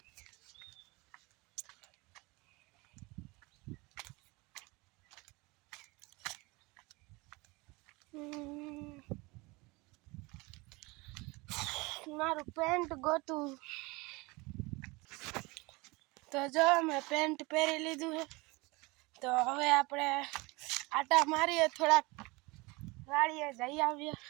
મારું પેન્ટ ગોતું તો જો મેં પેન્ટ પહેરી લીધું છે તો હવે આપણે આટા મારીએ થોડાક વાડીએ જઈ આવીએ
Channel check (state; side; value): quieter; left; 24.8 dB